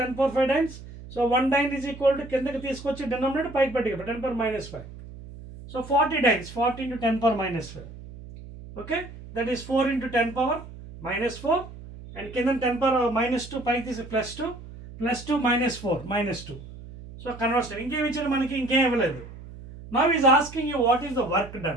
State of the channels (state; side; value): noise; right; hum, 15 dB below the sound